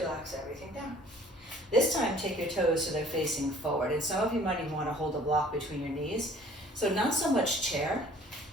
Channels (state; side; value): normal; both; correlation 0.53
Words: everything down. This time, take your toes so they're facing forward. And some of you might even want to hold a block between your knees. So not so much chair,